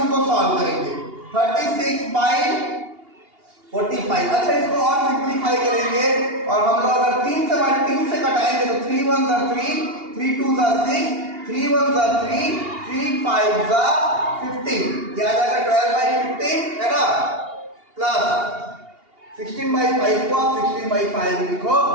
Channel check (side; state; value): left; late; 2.8 ms